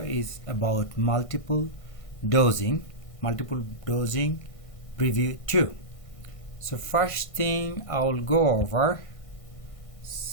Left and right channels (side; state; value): right; late; 1.6 ms